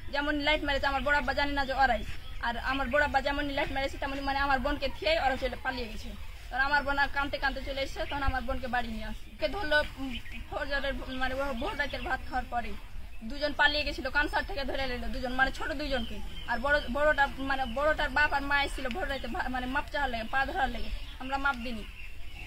যেমন লাইট মেরেছে। আমার বড় আব্বা জানি না যে ওরাই, আর আমার বড় আব্বা যেমন লাইট মেরেছে তেমন মানে আমার বোনকে থিয়ে ওরা পালিয়ে গেছে। তখন আমার বোন কাঁদতে কাঁদতে চলে এসেছে, তখন আমার বোনকে বাড়ি নিয়ে আসছে। ধরলো ফজরের মানে ভোর রাতের ভাত খাওয়ার পরে দুজন পালিয়ে গেছিল, কানসার থেকে ধরে নিল দুজন, মানে ছোট দুইজনকে। আর বড়টা মানে বড়টার বাপ আর মা এসেছিল ভোর রাতে, মানে মাপ চাওয়ার লেগে, পা ধরার লেগে। আমরা মাপ দিনি।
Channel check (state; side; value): identical; both; correlation 1.00